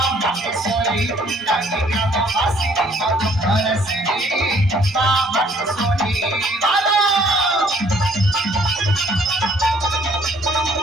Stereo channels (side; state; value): both; normal; correlation 0.61